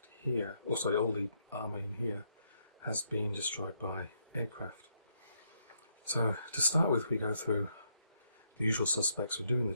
here, or sorry, all the armour in here has been destroyed by aircraft. So to start with, we go through the usual suspects for doing the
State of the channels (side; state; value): both; inverted; correlation -0.75